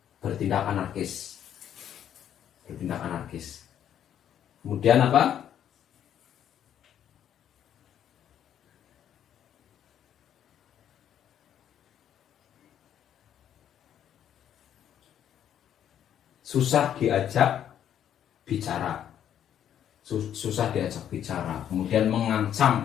Bertindak anarkis. Bertindak anarkis. Kemudian apa? Susah diajak bicara. Susah diajak bicara, kemudian mengancam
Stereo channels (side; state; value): right; quieter; 9.9 dB